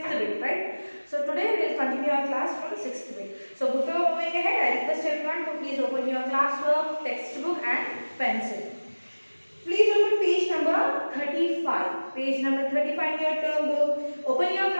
bit, right? So today we will continue our class from 6th bit. So before moving ahead, I request everyone to please open your classwork, textbook and pencil. Please open page number 35. Page number 35 in your term book. Open your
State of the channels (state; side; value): inverted; both; correlation -1.00